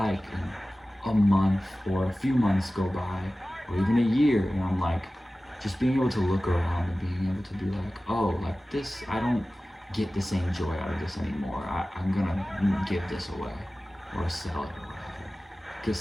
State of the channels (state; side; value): normal; both; correlation 0.96